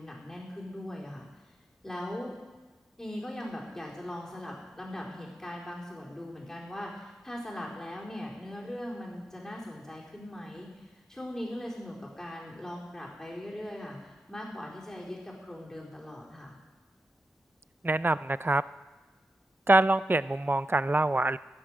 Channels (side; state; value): both; normal; correlation 0.88